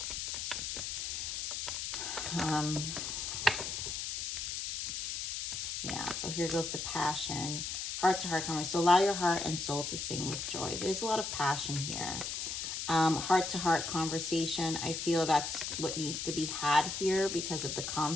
Yeah, so here goes the passion. Heart-to-heart conversation. So allow your heart and soul to sing with joy. There's a lot of passion here. Heart-to-heart conversation. I feel that's what needs to be had here because of the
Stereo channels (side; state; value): left; noise; hiss, 3 dB below the sound